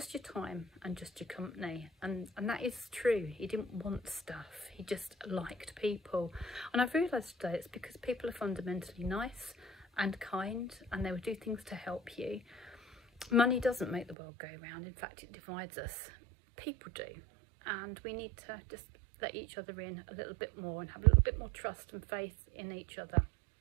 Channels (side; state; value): left; drops out; at 14.2 s